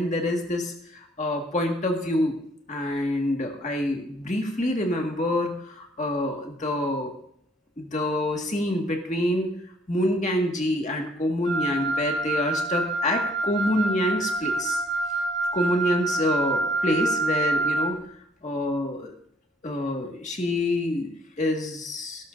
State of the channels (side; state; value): both; normal; correlation 0.63